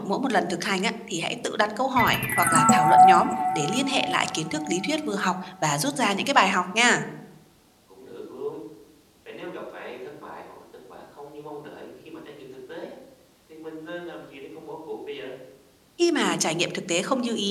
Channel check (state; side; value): identical; both; correlation 1.00